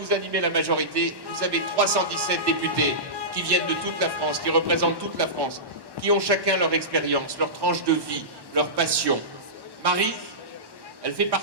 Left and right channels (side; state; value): left; late; 1.1 ms